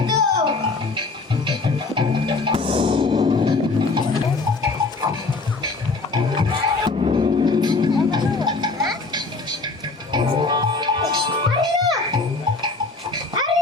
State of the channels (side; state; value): right; quieter; 3.7 dB